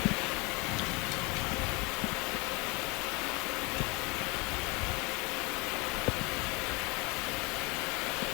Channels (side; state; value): right; quieter; 27.7 dB